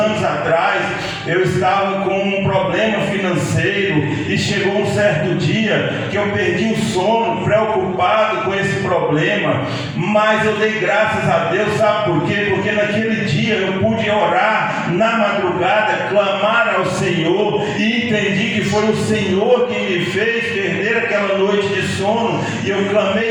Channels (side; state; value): both; identical; correlation 1.00